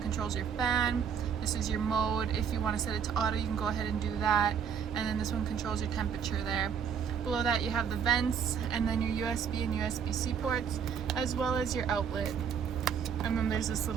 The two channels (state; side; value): quieter; left; 7.5 dB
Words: controls your fan. This is your mode. If you want to set it to auto, you can go ahead and do that. And then this one controls your temperature there. Below that you have the vents, and then your USB and USB-C ports, as well as your outlet. And then there's this